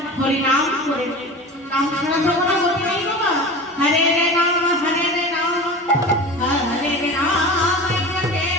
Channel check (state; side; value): normal; both; correlation 0.33